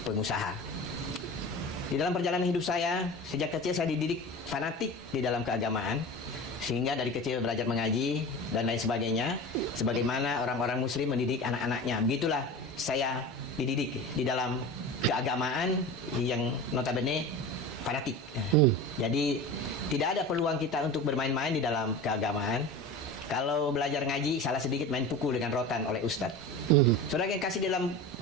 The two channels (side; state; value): both; normal; correlation 0.32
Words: Di dalam perjalanan hidup saya, sejak kecil saya dididik fanatik di dalam keagamaan. Sehingga dari kecil belajar mengaji dan lain sebagainya. Sebagaimana orang-orang muslim mendidik anak-anaknya. Begitulah saya dididik di dalam keagamaan yang notabene fanatik. Jadi tidak ada peluang kita untuk bermain-main di dalam keagamaan. Kalau belajar ngaji, salah sedikit main pukul dengan rotan oleh ustadz. Saudara yang kasih, dalam